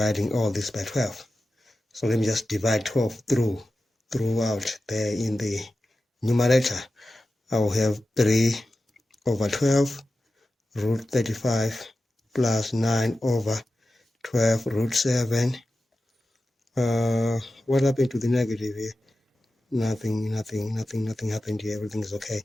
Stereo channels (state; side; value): normal; both; correlation 0.93